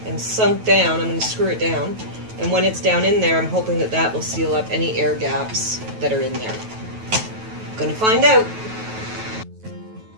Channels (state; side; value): late; left; 9.2 ms